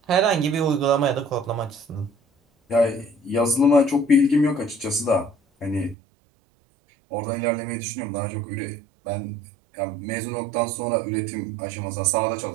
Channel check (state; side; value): drops out; left; at 6.0 s